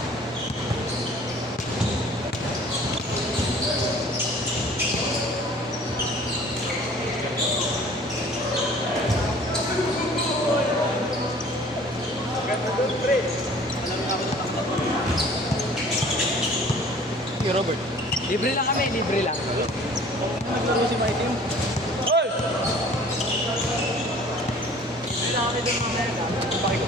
Hey, Robert. Libre lang kami, libre lang. Naglaro si Mikey yun. Hoy! Libre lang kami doon mamaya.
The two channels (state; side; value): normal; both; correlation 0.50